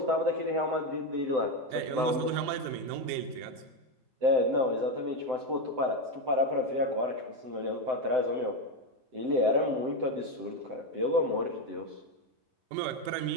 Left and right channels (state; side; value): late; left; 7.8 ms